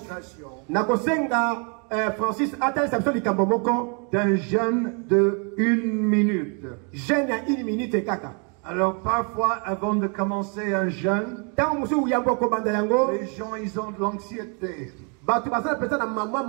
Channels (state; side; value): quieter; left; 37.4 dB